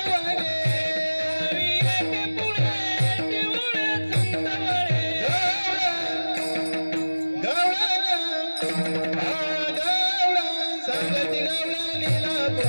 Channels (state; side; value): inverted; both; correlation -1.00